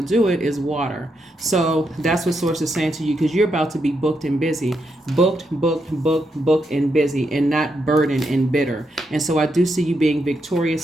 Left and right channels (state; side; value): normal; both; correlation 0.81